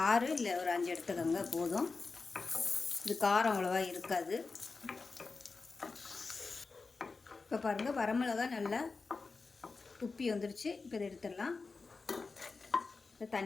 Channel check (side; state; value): right; quieter; 4.2 dB